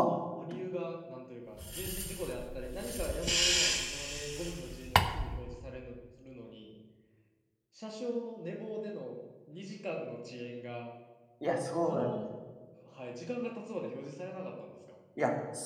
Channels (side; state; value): both; identical; correlation 1.00